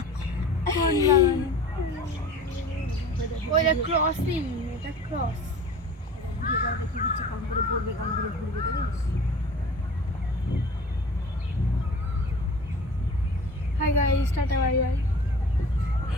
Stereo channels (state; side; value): normal; both; correlation 0.41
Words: কোন বাগানে? ওইটা ক্রসিং, এটা ক্রস। দেখি দিচ্ছে কাম করে পড়বে, কাম করে ঘুরবে। Hi guys, tata bye bye.